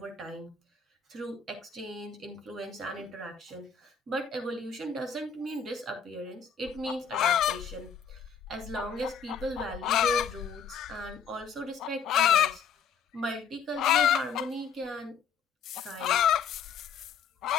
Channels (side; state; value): right; quieter; 6.5 dB